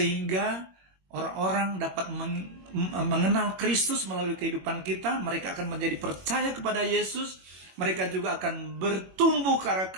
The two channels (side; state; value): left; late; 21 ms